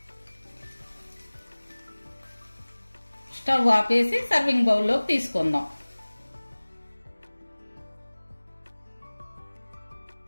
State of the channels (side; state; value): both; inverted; correlation -1.00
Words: స్టవ్ ఆపేసి సర్వింగ్ బౌల్లోకి తీసుకుందాం.